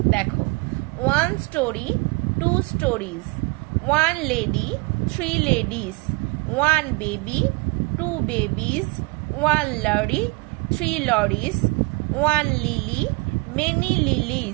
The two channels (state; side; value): quieter; left; 28.3 dB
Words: দেখো, 1 story, 2 stories, 1 lady, 3 ladies, 1 baby, 2 babies, 1 lorry, 3 lorries, 1 lily, many